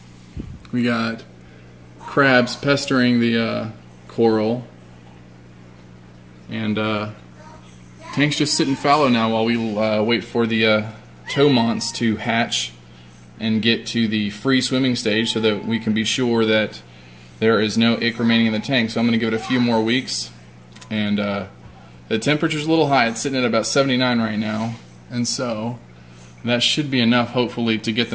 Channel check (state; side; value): identical; both; correlation 1.00